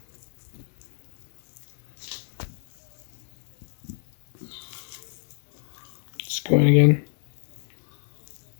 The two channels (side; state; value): right; silent; digital silence